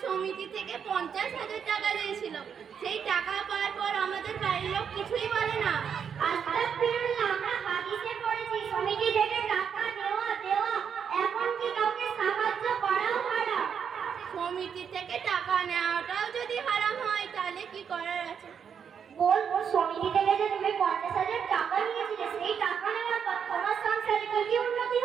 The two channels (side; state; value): left; quieter; 7.4 dB